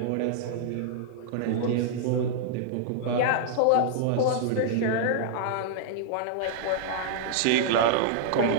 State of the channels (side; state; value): both; different; correlation -0.01